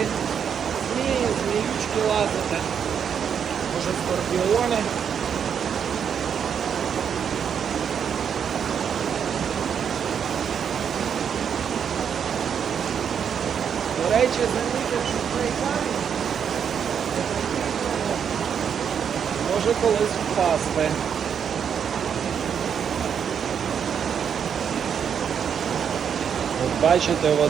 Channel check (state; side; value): quieter; left; 7.7 dB